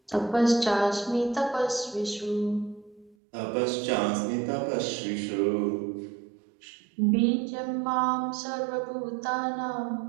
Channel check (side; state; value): left; drops out; at 3.2 s